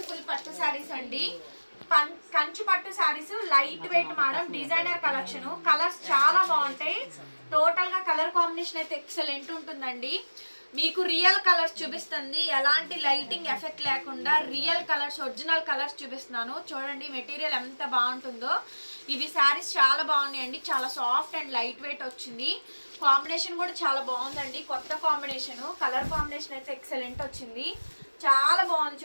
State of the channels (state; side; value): inverted; both; correlation -1.00